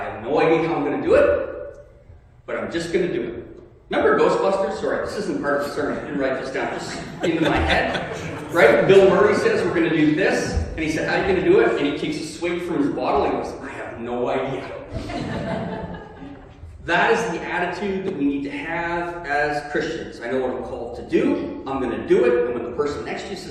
no idea how I'm going to do it, but I'm just going to do it. Remember Ghostbusters? Sorry, this isn't part of the sermon. I didn't write this down. Just into my head. Right? Bill Murray says we're going to do this. And he said, how are you going to do it? And he takes a swig from his bottle and he goes, I have no idea. That is the attitude that we need to have as Christians. I know what I'm called to do. I'm going to do it. And when the person next to you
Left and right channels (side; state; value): both; identical; correlation 1.00